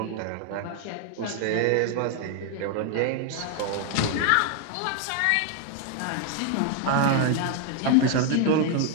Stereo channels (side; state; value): both; different; correlation 0.00